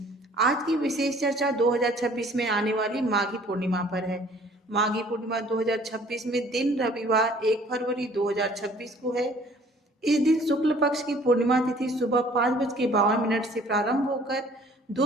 आज की विशेष चर्चा 2026 में आने वाली माघी पूर्णिमा पर है। माघी पूर्णिमा 2026 में दिन रविवार 1 फरवरी 2026 को है। इस दिन शुक्ल पक्ष की पूर्णिमा तिथि सुबह 5:52 से प्रारंभ होकर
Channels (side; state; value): both; normal; correlation 0.54